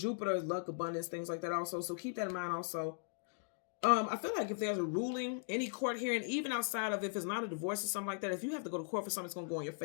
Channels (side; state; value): right; silent; digital silence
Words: is luck, abundance, things like that also. So keep that in mind also. I feel like if there's a ruling, any court hearing, even outside of if it's not a divorce or something like that, if you have to go to court for something, it's going to go in your